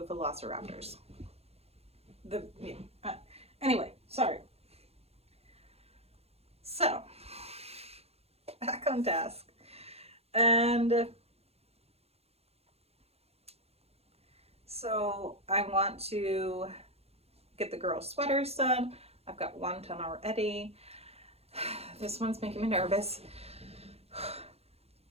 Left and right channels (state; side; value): late; left; 0.29 ms